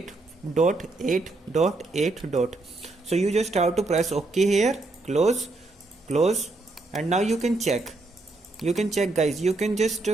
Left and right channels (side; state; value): left; quieter; 3.2 dB